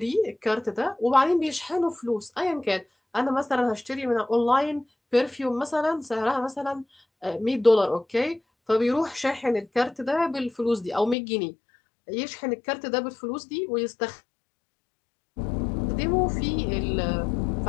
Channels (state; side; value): drops out; right; at 11.2 s